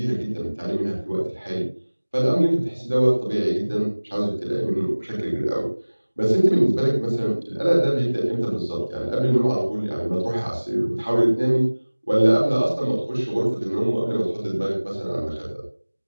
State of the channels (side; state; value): both; inverted; correlation -1.00